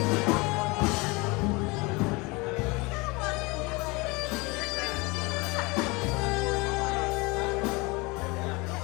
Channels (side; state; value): right; quieter; 25.9 dB